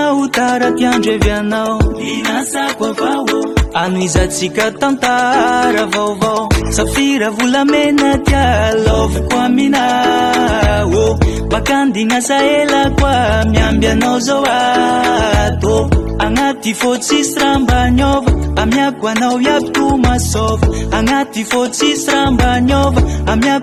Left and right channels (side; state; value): both; identical; correlation 1.00